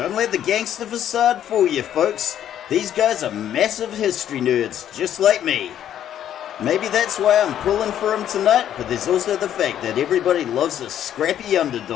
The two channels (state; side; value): quieter; right; 10.6 dB